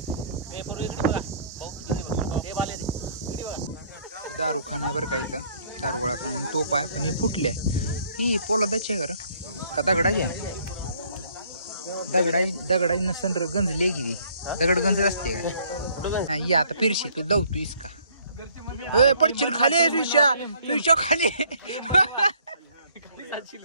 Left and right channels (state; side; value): inverted; both; correlation -0.61